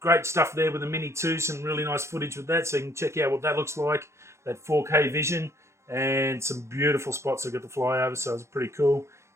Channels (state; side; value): late; left; 0.13 ms